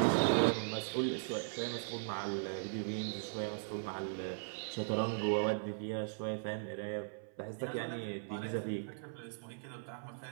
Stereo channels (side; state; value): left; silent; 52 dB below the other